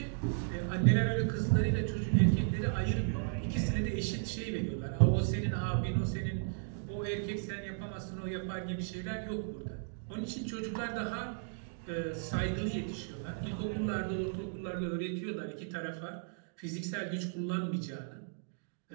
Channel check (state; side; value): silent; left; digital silence